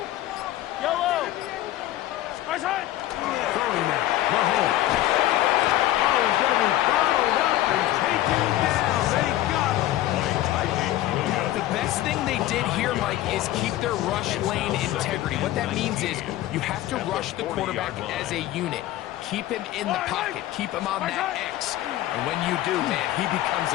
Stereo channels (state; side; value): quieter; right; 14.7 dB